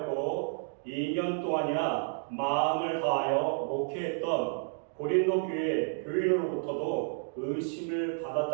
2년 동안이나 마음을 다하여 목회했던 고린도 교회 교인으로부터도 의심을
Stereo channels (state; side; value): silent; left; digital silence